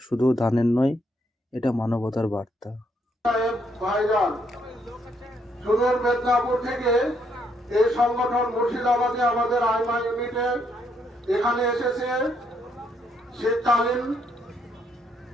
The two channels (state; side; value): normal; both; correlation 0.73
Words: শুধু দানের নয়, এটা মানবতার বার্তা। ভাইজান সুদূর মেদিনীপুর থেকে এই সংগঠন মুর্শিদাবাদে আমাদের আইমা ইউনিটে এখানে এসেছে শীতকালীন